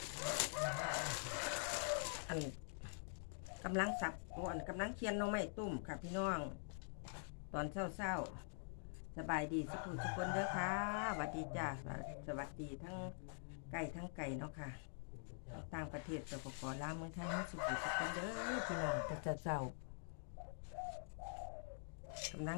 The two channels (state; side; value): silent; right; digital silence